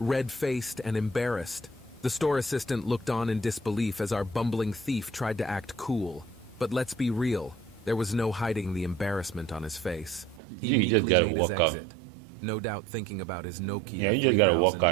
and embarrassed. The store assistant looked on in disbelief as our bumbling thief tried to act cool. But let's be real, there was no hiding the embarrassment on his face. He You just meekly gotta made his walk out. exit, no doubt thinking about his Nokia Yeah, you just gotta walk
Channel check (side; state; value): left; drops out; at 10.4 s